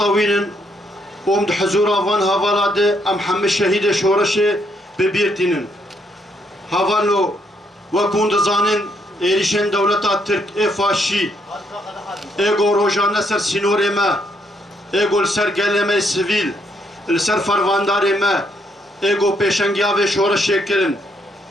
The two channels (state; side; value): normal; both; correlation 0.73